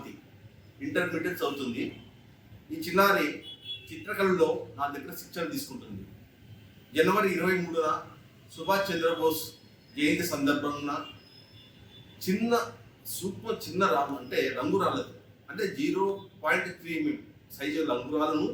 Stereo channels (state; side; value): identical; both; correlation 1.00